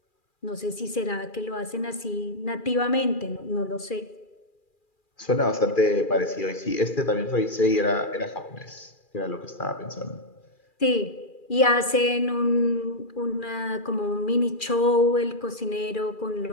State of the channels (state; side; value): late; right; 2.4 ms